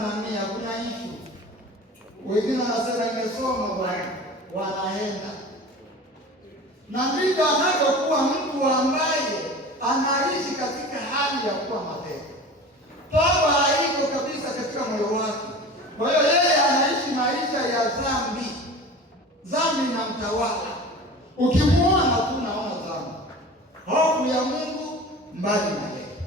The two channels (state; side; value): normal; both; correlation 0.37